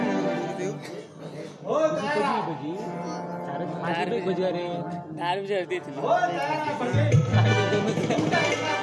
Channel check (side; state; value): both; identical; correlation 1.00